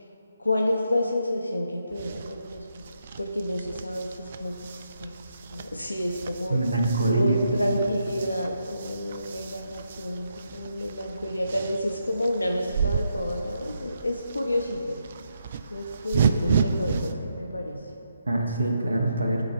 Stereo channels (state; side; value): inverted; both; correlation -0.80